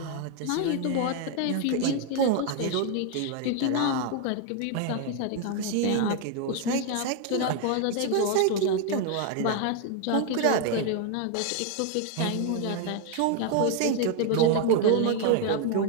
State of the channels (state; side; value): different; both; correlation 0.01